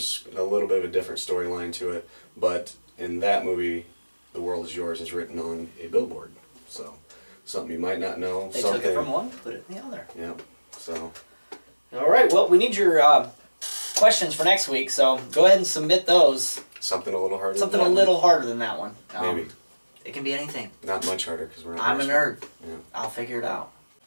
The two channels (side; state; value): both; inverted; correlation -1.00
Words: a little bit of a different storyline to it, but in that movie, The World Is Yours is written on a billboard. So, something you might not know. They took it from one, put it in the other. Yeah, so... Alright, well, we need your questions for next week, so go ahead and submit those. Something a little harder Something a little harder than that one. Maybe. It can be anything. Not much harder, because we're not... I'm a nerd. Yeah. I'll figure it out.